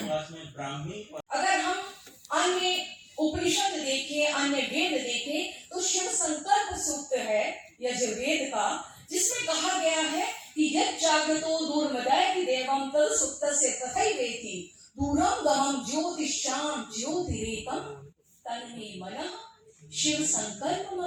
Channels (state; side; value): identical; both; correlation 1.00